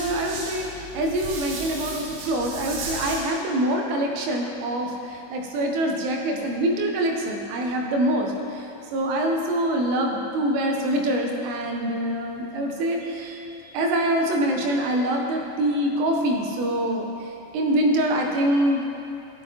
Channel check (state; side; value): late; left; 24 ms